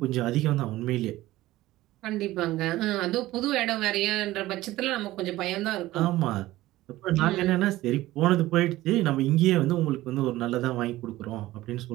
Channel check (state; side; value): quieter; left; 16.7 dB